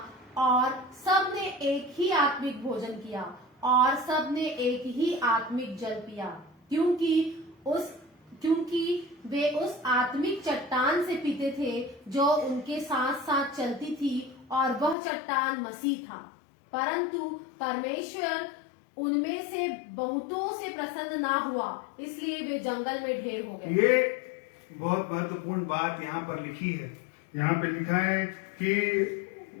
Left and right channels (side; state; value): right; drops out; at 15.0 s